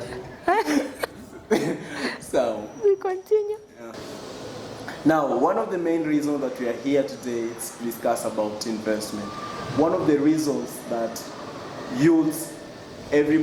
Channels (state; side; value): identical; both; correlation 1.00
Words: So we continue. Now, one of the main reasons that we are here today is to discuss about investment. One of the reasons that youths,